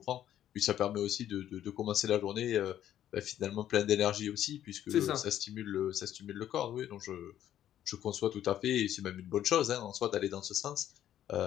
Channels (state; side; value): quieter; right; 11.3 dB